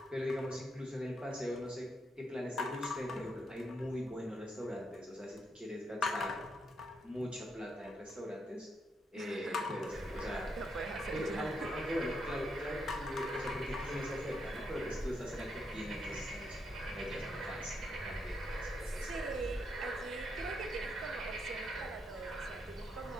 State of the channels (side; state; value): both; normal; correlation 0.79